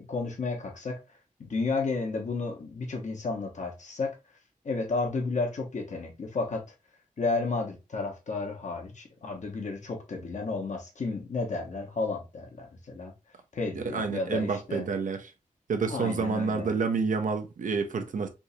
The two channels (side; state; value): both; normal; correlation 0.53